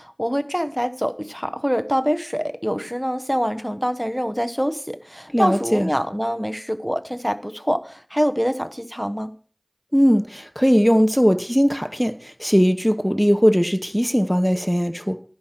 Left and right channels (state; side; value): identical; both; correlation 1.00